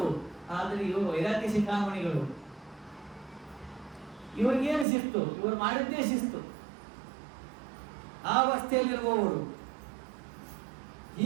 ಆದ್ರೆ ಇವರು ವೈರಾಗ್ಯ ಶಿಖಾಮಣಿಗಳು. ಇವ್ರಿಗೇನು ಶಿಸ್ತು? ಇವರು ಮಾಡಿದ್ದೇ ಶಿಸ್ತು. ಆ ಅವಸ್ಥೆಯಲ್ಲಿರುವವರು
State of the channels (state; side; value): drops out; left; at 4.9 s